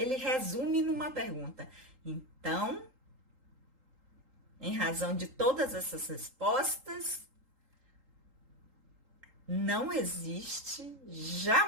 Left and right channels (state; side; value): late; left; 3.8 ms